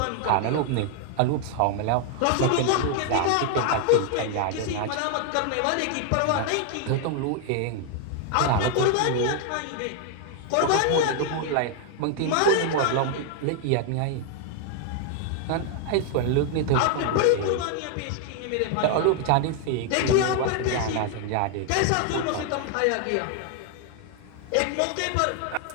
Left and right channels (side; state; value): both; different; correlation 0.00